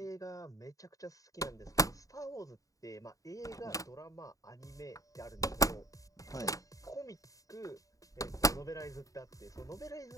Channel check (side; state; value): right; late; 0.16 ms